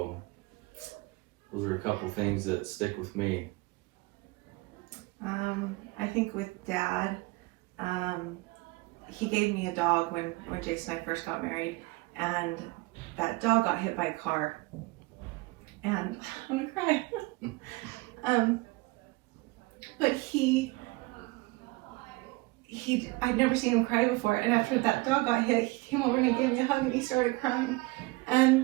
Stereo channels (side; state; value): left; quieter; 23.3 dB